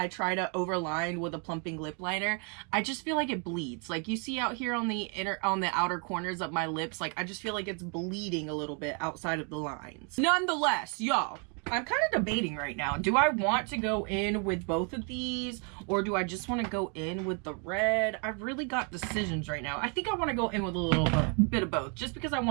try to overline with a plumping lip liner, I just feel like it bleeds. Like you see out here on the outer corners of my lips, like I just feel like it's bleeding a little bit outside of the lines. Nonetheless, y'all, I'm kind of debating right now. Do I want to go in with both of these, or do I just want to go in with the red? I've really got decisions right now. I think I want to go in with a little bit of both, just because I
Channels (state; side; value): quieter; left; 37.5 dB